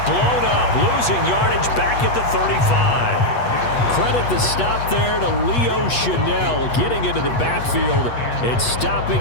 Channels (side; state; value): right; late; 8.3 ms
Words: blown up, losing yardage back at the 35. Credit the stop there to Leo Chanel, getting into the backfield and stopping